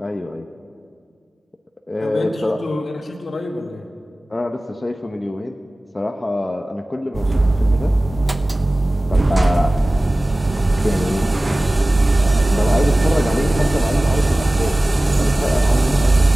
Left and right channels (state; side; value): normal; both; correlation 0.97